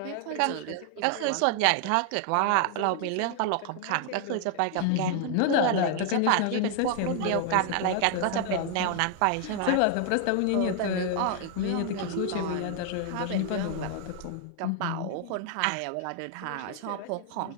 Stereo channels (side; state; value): both; different; correlation 0.00